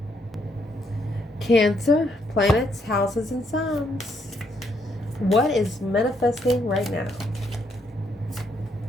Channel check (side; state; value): both; normal; correlation 0.73